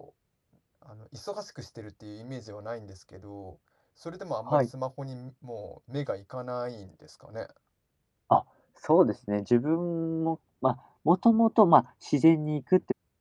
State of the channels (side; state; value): both; identical; correlation 1.00